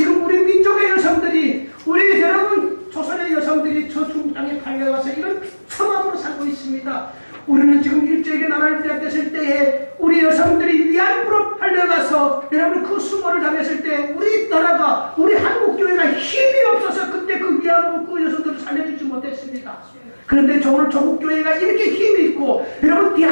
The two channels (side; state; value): both; inverted; correlation -1.00